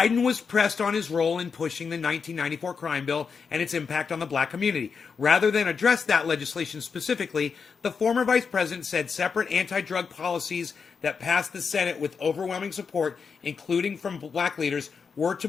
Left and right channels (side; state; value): right; quieter; 5.7 dB